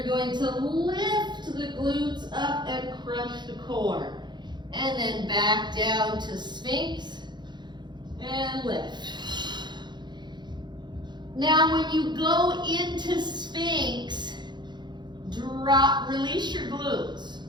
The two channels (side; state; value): left; late; 0.21 ms